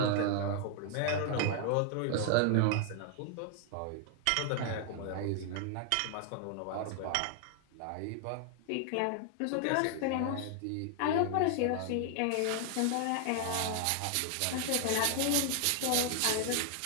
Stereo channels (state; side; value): different; both; correlation 0.00